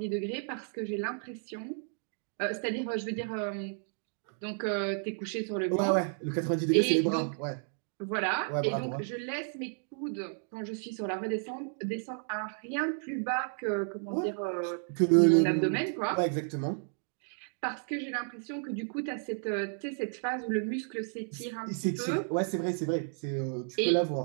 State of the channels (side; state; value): left; silent; 56 dB below the other